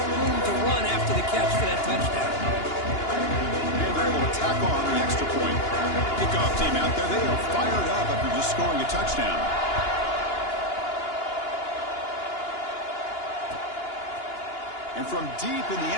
room to run after the catch for that touchdown. And they're able to tack on the extra point. Kickoff team out there. They are fired up after just scoring a touchdown. And from deep in the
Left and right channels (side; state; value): right; late; 2.9 ms